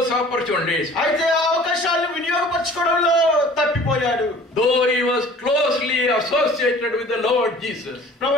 opportunities. అయితే ఆ అవకాశాలను వినియోగపరచుకోవడంలో తప్పిపోయాడు. Though he was closely associated with the Lord Jesus.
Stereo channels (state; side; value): normal; both; correlation 0.48